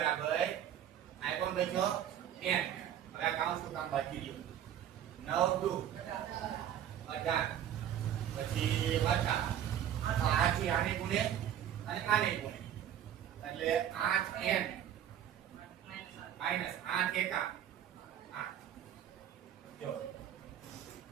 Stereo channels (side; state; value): left; quieter; 10.3 dB